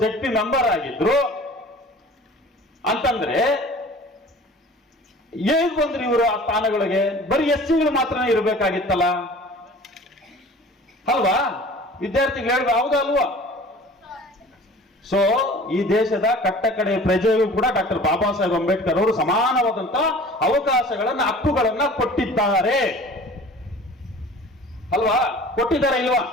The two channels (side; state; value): both; normal; correlation 0.45